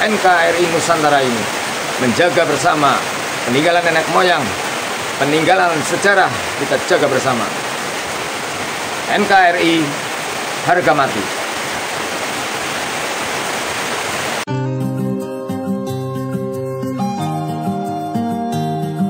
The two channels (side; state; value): both; identical; correlation 1.00